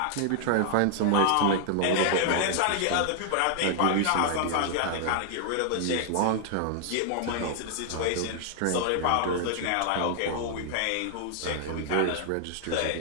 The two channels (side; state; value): both; different; correlation -0.01